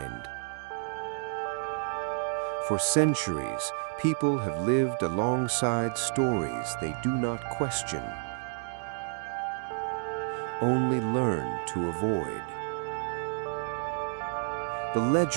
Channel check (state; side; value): silent; left; 58 dB below the other